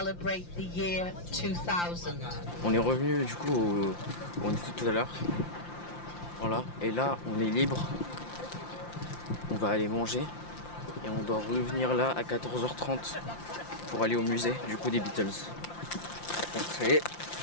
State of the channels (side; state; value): right; late; 5.8 ms